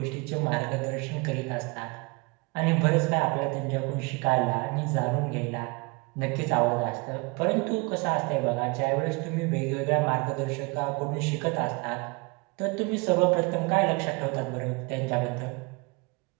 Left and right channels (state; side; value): quieter; left; 27.7 dB